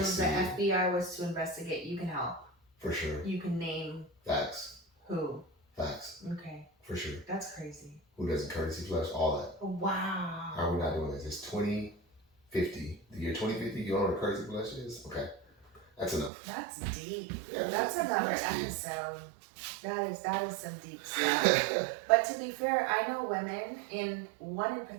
if the FBI was to investigate, you can help. For sure. You can name. Facts. Who? Facts. Okay. For sure. That's crazy. Who doesn't courtesy flush? All that. Wow. How are we not doing this? It's 2050. The year 2050, you don't know what a courtesy flush is? Okay. That's enough. That's deep. Yeah, that's another episode. That is some deep stuff. But to be fair, I know women, one in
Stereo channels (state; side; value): drops out; left; at 16.3 s